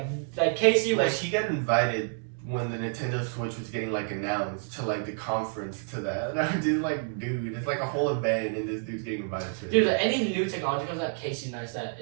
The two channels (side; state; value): left; silent; 57 dB below the other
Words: Casey Like was. he got invited when the Nintendo Switch was getting like announced to like the conference to that. And I'm just like, dude, it's like a whole event, and this dude's getting invited to it. Dude, any new technology comes out, Casey Neistat